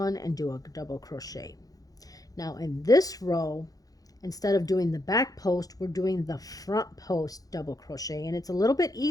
and do a double crochet. Now in this row, instead of doing the back post, we're doing the front post double crochet, and it's a little bit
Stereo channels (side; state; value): right; late; 0.18 ms